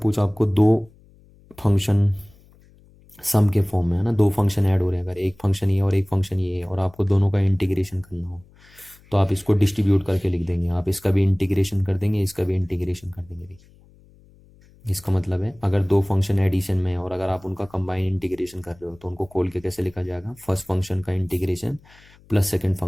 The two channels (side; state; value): left; noise; hum, 27 dB below the sound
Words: आपको दो फंक्शन सम के फॉर्म में, है ना, दो फंक्शन ऐड हो रहे हैं, अगर एक फंक्शन ये और एक फंक्शन ये है, और आपको दोनों का इंटीग्रेशन करना हो, तो आप इसको डिस्ट्रीब्यूट करके लिख देंगे। आप इसका भी इंटीग्रेशन कर देंगे, इसका भी इंटीग्रेशन कर देंगे। देखिए इसका मतलब है अगर दो फंक्शन एडिशन में है और अगर आप उनका कंबाइन इंटीग्रेशन कर रहे हो, तो उनको खोल के कैसे लिखा जाएगा, फर्स्ट फंक्शन का इंटीग्रेशन प्लस सेकेंड